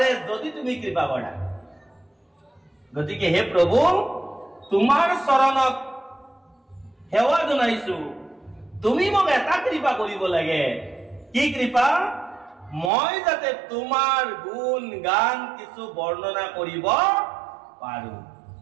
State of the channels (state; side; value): drops out; left; at 12.9 s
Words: যদি তুমি কৃপা কৰা। গতিকে হে প্ৰভু, তোমাৰ চৰণত সেৱা জনাইছো, তুমি মোক এটা কৃপা কৰিব লাগে। কি কৃপা? মই যাতে তোমাৰ গুণ গান কিছু বৰ্ণনা কৰিব পাৰো।